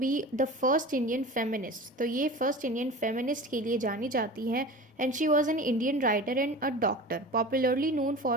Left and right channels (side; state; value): both; normal; correlation 0.35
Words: the first Indian feminist. तो ये फर्स्ट इंडियन फेमिनिस्ट के लिए जानी जाती हैं and she was an Indian writer and a doctor popularly known